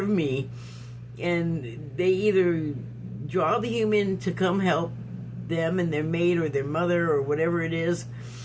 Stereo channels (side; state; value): both; identical; correlation 1.00